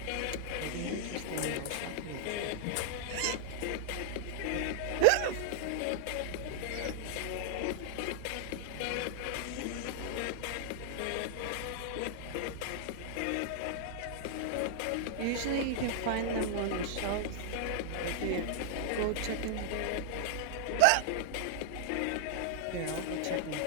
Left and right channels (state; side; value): different; both; correlation 0.00